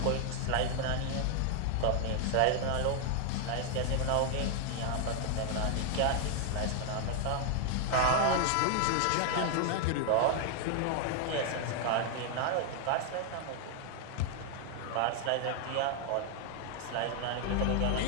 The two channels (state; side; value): different; both; correlation 0.00